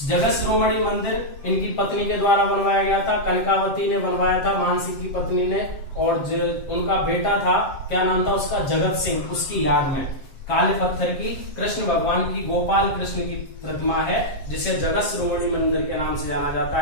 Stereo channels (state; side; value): late; right; 7.7 ms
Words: जगत शिरोमणि मंदिर इनकी पत्नी के द्वारा बनवाया गया था, कनकावती ने बनवाया था, मानसिंह की पत्नी ने। और उनका बेटा था, क्या नाम था उसका? जगत सिंह। उसकी याद में काले पत्थर की कृष्ण भगवान की, गोपाल कृष्ण की प्रतिमा है जिसे जगत शिरोमणि मंदिर के नाम से जाना जाता